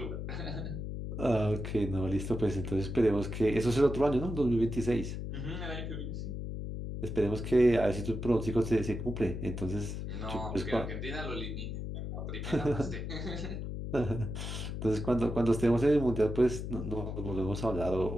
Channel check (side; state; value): left; noise; hum, 5 dB below the sound